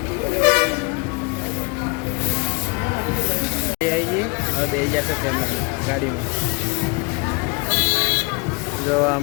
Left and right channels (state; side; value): quieter; right; 30.5 dB